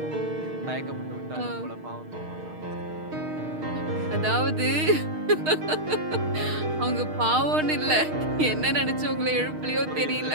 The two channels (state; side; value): late; left; 6.5 ms